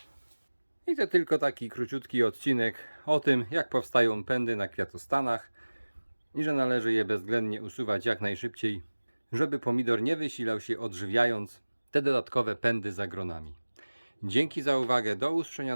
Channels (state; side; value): inverted; both; correlation -1.00